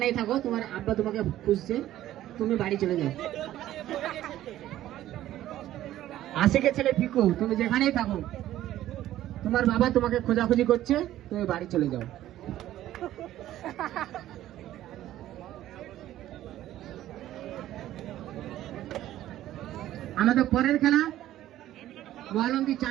থাকো তোমার আব্বা তোমাকে খুঁজছে, তুমি বাড়ি চলে যাও। আশিকের ছেলে পিকু, তুমি যেখানেই থাকো তোমার বাবা তোমাকে খোঁজাখুঁজি করছে, তুমি বাড়ি চলে যাও। আমাদের পরের খেলা মহালন্দি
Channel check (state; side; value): quieter; left; 13.6 dB